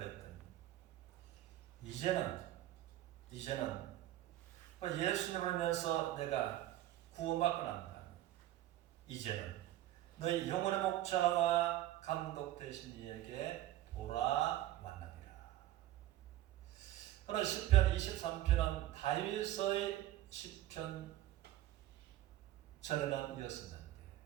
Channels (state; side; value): quieter; left; 14.1 dB